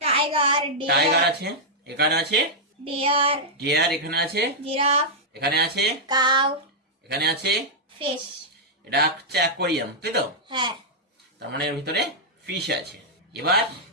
টাইগার, টাইগার আছে, এখানে আছে ডিয়ার, ডিয়ার, এখানে আছে জিরাফ, এখানে আছে কাউ, এখানে আছে ফিশ। এটা হচ্ছে অ্যাকোয়ারিয়াম, তাই তো? হ্যাঁ। তার মানে এর ভিতরে ফিশ আছে। এবার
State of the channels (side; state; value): both; normal; correlation -0.08